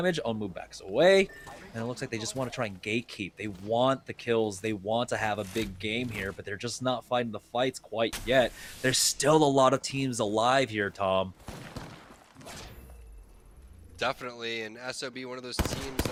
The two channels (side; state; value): both; identical; correlation 1.00